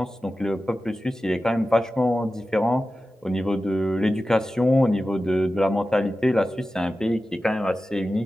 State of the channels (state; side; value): normal; both; correlation 0.94